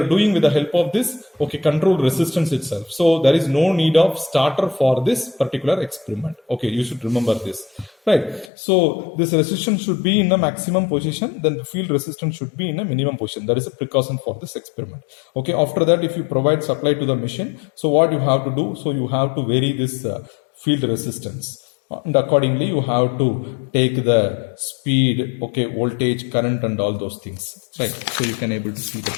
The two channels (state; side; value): drops out; right; at 8.5 s